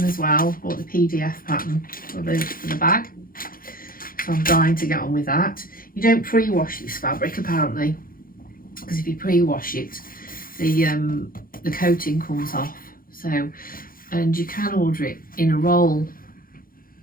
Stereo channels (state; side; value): late; right; 0.42 ms